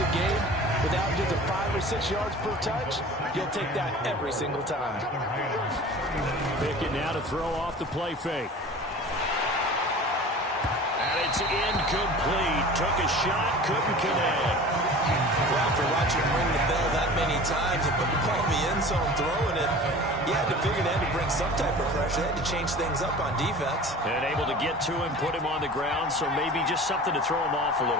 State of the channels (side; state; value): both; normal; correlation 0.40